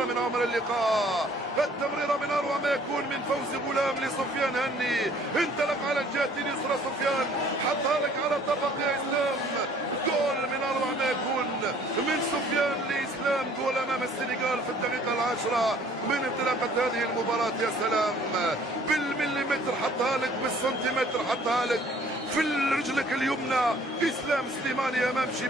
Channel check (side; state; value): both; normal; correlation 0.56